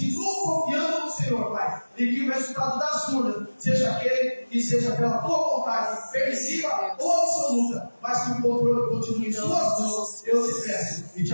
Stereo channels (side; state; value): both; inverted; correlation -1.00